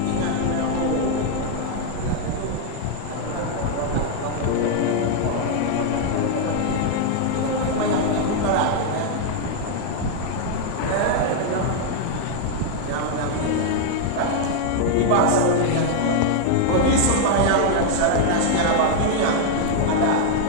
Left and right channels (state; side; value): different; both; correlation 0.00